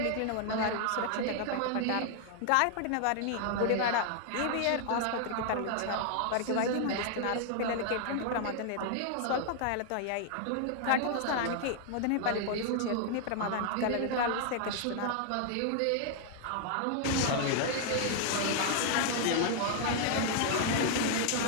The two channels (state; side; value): different; both; correlation 0.00